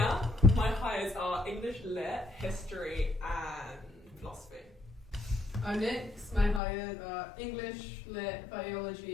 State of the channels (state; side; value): drops out; right; at 6.6 s